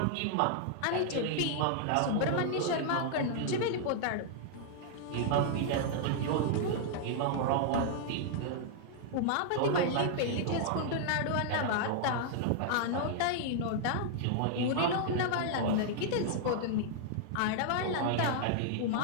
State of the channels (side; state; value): both; different; correlation -0.01